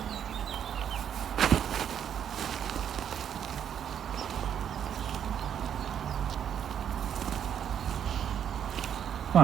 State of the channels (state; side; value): quieter; left; 8.9 dB